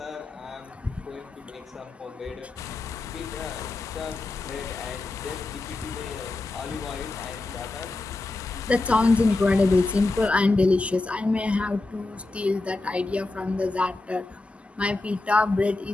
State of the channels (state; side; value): quieter; right; 3.1 dB